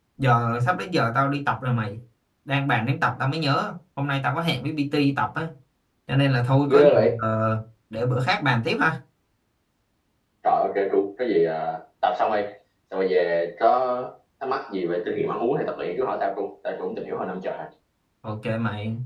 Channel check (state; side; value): identical; both; correlation 1.00